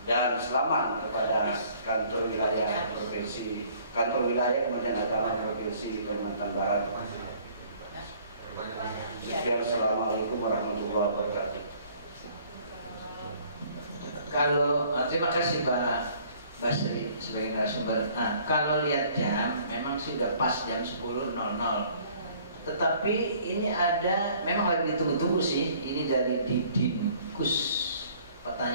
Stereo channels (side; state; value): both; inverted; correlation -0.57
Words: dan selamat kepada kantor wilayah Kementerian Agama Provinsi Kalimantan Barat. Assalamualaikum warahmatullahi wabarakatuh. Kalau terima kasih Pak Basri sebagai narasumber. Nah, kalau lihat jam, memang sudah pas jam 10.00. Tetapi ini ada, memang lagi ditunggu-tunggu sih. Ini dari Didinkus.